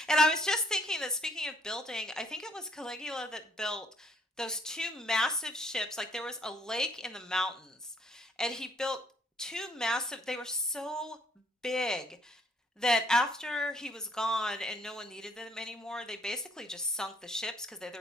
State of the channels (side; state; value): both; normal; correlation 0.65